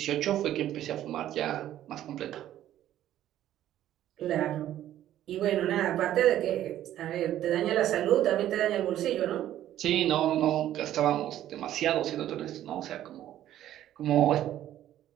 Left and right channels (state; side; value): quieter; left; 12.4 dB